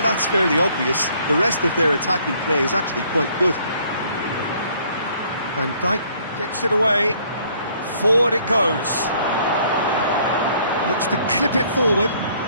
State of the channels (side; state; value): both; inverted; correlation -0.62